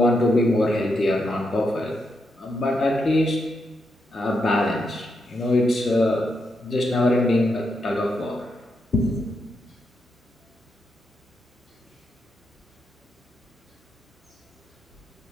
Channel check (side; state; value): both; normal; correlation 0.82